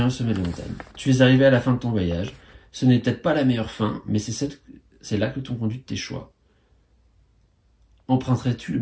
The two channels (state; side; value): identical; both; correlation 1.00